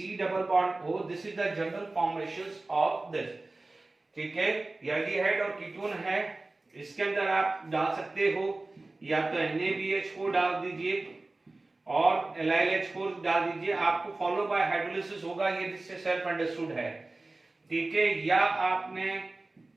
double bond O, this is the general formations of this. ठीक है, एल्डिहाइड और कीटोन है, इसके अंदर आप डाल सकते हो या तो NaBH4 डाल दीजिए और LiLH4 डाल दीजिए, आपको फॉलो बाय हाइड्रोलिसिस होगा, ये जिससे सेल्फ अंडरस्टूड है। ठीक है, या आपने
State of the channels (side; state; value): left; quieter; 3.1 dB